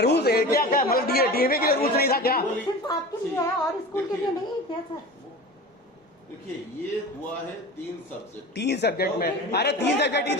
रूल्स है क्या? क्या मतलब डीएवी के लिए रूल्स नहीं था क्या? सिर्फ आपके लिए है और स्कूल के लिए नहीं है क्या सर? देखिए ये हुआ है 3 सब्जेक्ट। 3 सब्जेक्ट में, अरे 3 सब्जेक्ट ही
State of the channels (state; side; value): normal; both; correlation 0.33